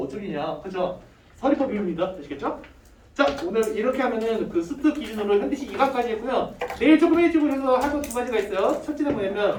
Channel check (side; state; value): both; identical; correlation 1.00